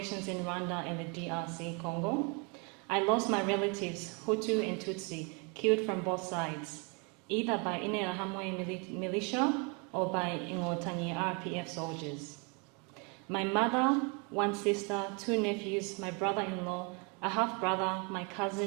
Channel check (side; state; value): left; quieter; 32.4 dB